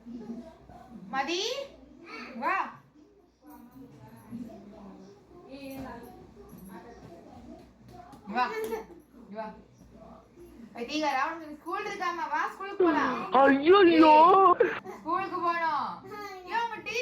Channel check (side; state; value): both; identical; correlation 1.00